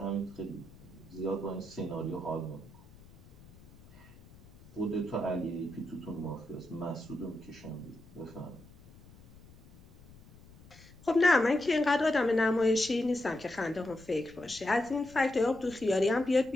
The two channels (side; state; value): left; noise; rumble, 23 dB below the sound